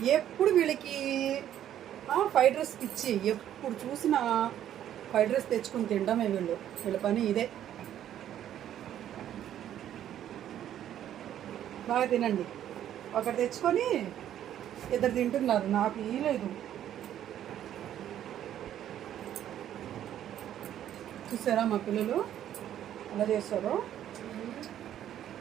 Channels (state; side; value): quieter; left; 11.0 dB